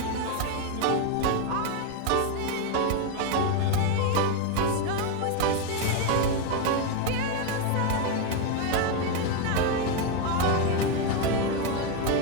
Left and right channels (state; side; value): different; both; correlation 0.02